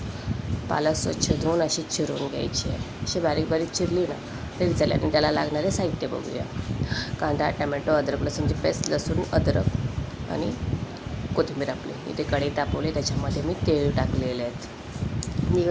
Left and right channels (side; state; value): both; identical; correlation 1.00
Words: पालक स्वच्छ धुवून अशी चिरून घ्यायची आहे. अशी बारीक बारीक चिरली ना तरी चालेल. आणि त्याला लागणारे साहित्य बघूया. कांदा, टमॅटो, अद्रक लसूणची पेस्ट, लसूण, अद्रक आणि कोथिंबीर. आपली इथे कढई तापवली, त्याच्यामध्ये मी तेल टाकलेले आहेत. ही